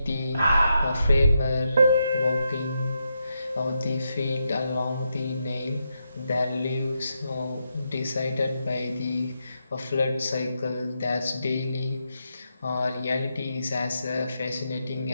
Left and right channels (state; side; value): inverted; both; correlation -0.84